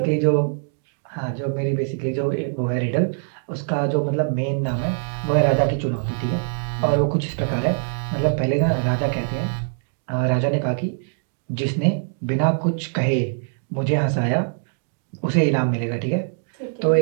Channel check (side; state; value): left; silent; digital silence